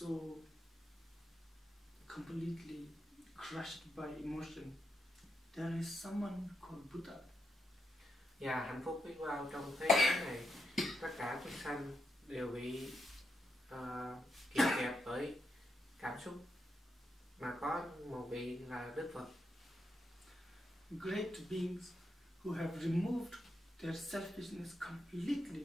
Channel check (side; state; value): both; normal; correlation 0.83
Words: completely crushed by emotion, there is someone called Buddha. Và hạnh phúc biết bao trong thế giới này, tất cả chúng sanh đều bị kìm kẹp bởi cảm xúc, mà có một vị là Đức Phật. Great beings who have removed their selfishness